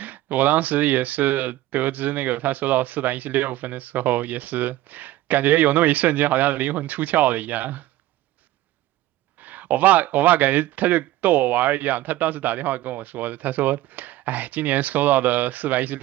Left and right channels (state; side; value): quieter; left; 15.7 dB